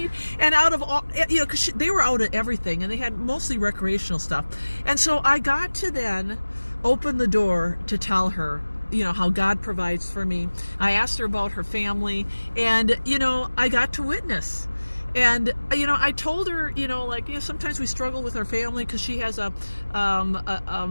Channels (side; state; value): both; inverted; correlation -1.00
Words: And out of all, you know, because they were out of everything, and they had mostly recreational stuff. And so I got to then open the door to tell her, you know, how God provides for me. I asked her about her family, and, you know, I got to witness. And, you know, I told her, you know, like, you know, sometimes we struggle with our family because she has a